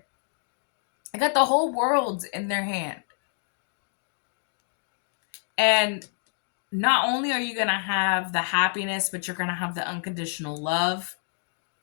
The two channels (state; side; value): silent; right; digital silence